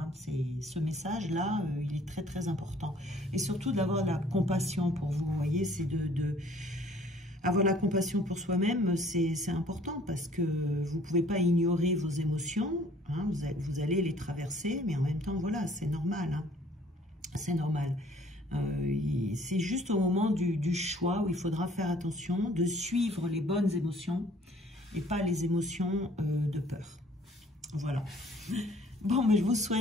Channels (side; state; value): both; normal; correlation 0.57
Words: Ce message-là, il est très, très important. Et surtout d'avoir de la compassion pour vous, vous voyez, c'est avoir la compassion pour soi-même, c'est important parce que vous ne pouvez pas ignorer vos émotions, hein, vous allez les traverser, mais en même temps, voilà, c'est normal. Hein, c'est normal. C'est juste au moment du choix où il faudra faire attention de suivre les bonnes émotions et pas les émotions de peur. Voilà. Bon, mais je vous